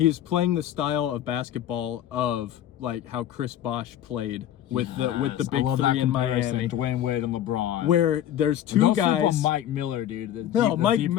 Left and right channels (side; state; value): right; quieter; 11.4 dB